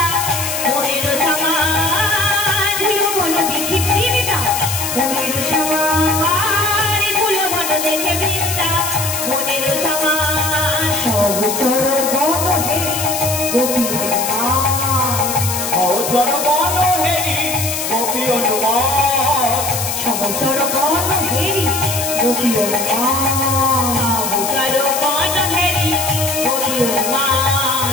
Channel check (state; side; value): noise; left; hiss, 3 dB below the sound